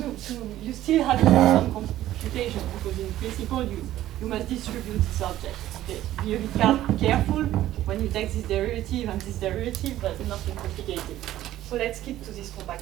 some computation, because in principle you must distribute this object. Okay. Be a bit careful when you take this derivative and this derivative, but nothing complicated. So let's keep to this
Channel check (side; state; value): left; quieter; 13.7 dB